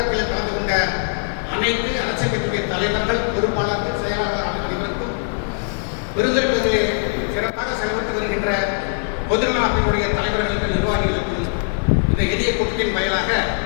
கலந்து கொண்ட அனைத்து அரசியல் கட்சியுடைய தலைவர்கள், பொறுப்பாளர்கள், செயலாளர் அனைவருக்கும், பெருந்துறை பகுதியில் சிறப்பாக செயல்பட்டு வருகின்ற பொதுநல அமைப்புடைய தலைவர்களுக்கு, நிர்வாகிகளுக்கும் இந்த எளிய கூட்டத்தின் வாயிலாக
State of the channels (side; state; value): right; silent; digital silence